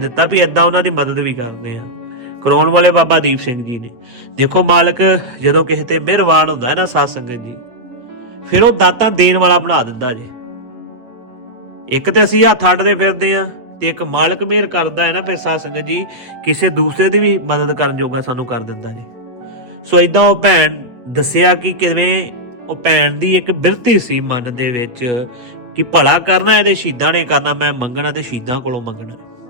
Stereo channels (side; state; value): left; late; 8.2 ms